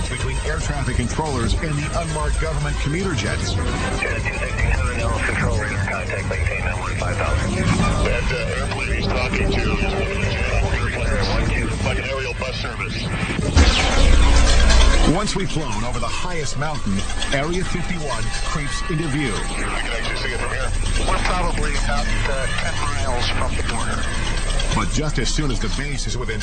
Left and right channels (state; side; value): identical; both; correlation 1.00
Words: between air traffic controllers and the unmarked government commuter jets. Janet 267, Ellis control radar contact, maintain that 15,000. That airplane he's talking to is one of the Janet airplanes, like an aerial bus service. Once we've flown over the highest mountain, Area 51 creeps into view. I can actually see it from here. We're probably about 10 miles from the border. But just as soon as the base is within